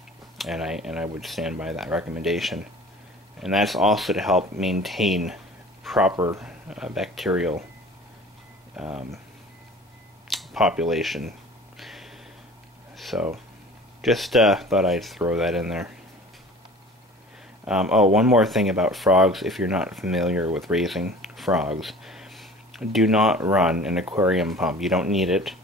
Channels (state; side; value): normal; both; correlation 0.44